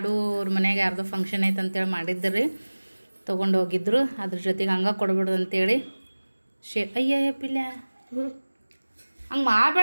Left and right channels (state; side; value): inverted; both; correlation -1.00